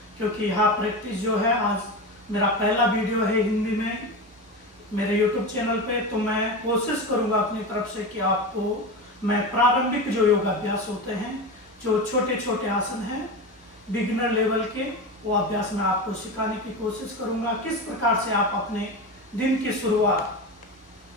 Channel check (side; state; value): both; normal; correlation 0.23